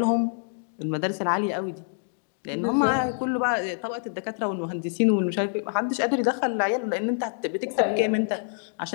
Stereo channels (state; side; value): silent; right; digital silence